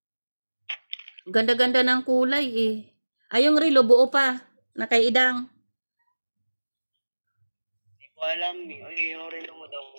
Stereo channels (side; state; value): both; inverted; correlation -1.00